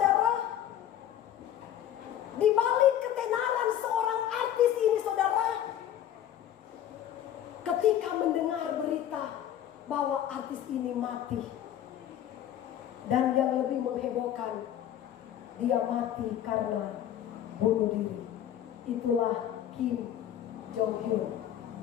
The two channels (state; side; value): quieter; right; 10.9 dB